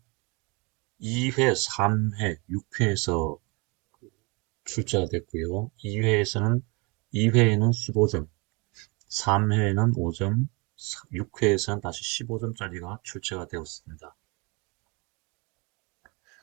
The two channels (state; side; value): quieter; left; 29.0 dB